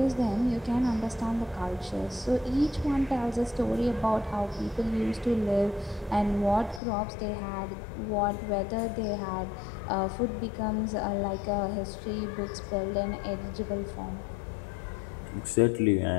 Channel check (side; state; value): right; drops out; at 6.8 s